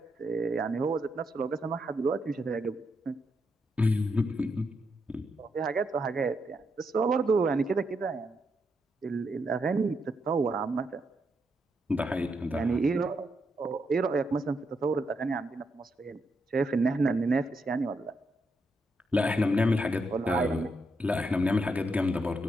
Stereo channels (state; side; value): normal; both; correlation 0.80